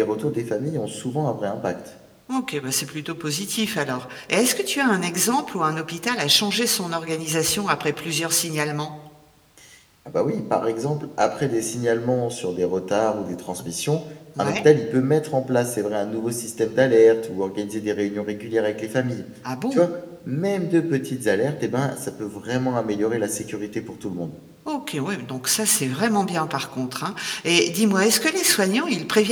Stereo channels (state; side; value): identical; both; correlation 1.00